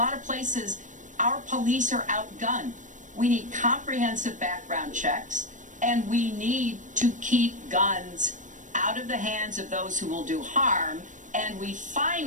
of places, our police are outgunned. We need comprehensive background checks, and we need to keep guns out of the hands of those who will do harm, and we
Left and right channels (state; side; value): late; left; 0.37 ms